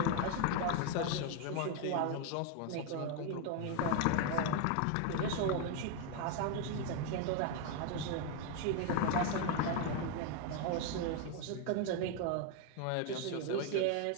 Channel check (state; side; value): different; both; correlation 0.01